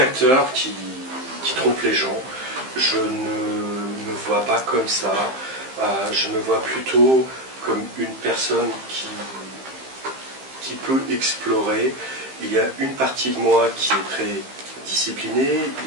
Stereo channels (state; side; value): late; left; 15 ms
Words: qui trompe les gens. Je ne me vois pas comme ça. Je me vois plutôt comme une personne qui peut explorer. Il y a une partie de moi qui est très disciplinée,